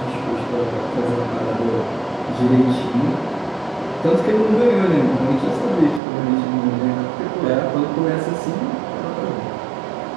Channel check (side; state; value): left; drops out; at 6.0 s